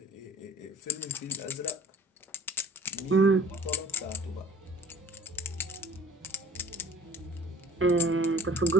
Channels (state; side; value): normal; both; correlation 0.50